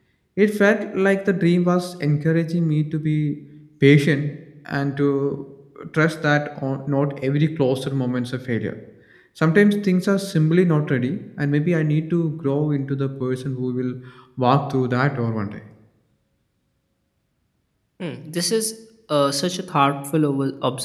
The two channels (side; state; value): both; identical; correlation 1.00